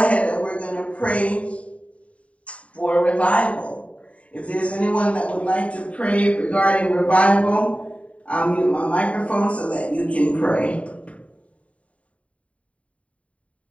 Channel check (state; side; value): late; right; 0.065 ms